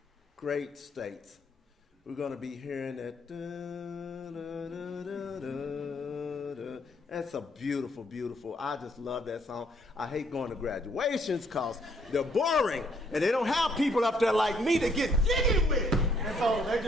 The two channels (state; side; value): normal; both; correlation 0.67